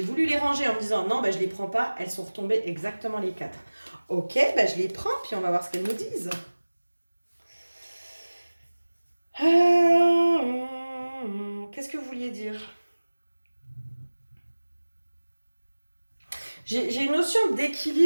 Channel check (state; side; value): inverted; both; correlation -1.00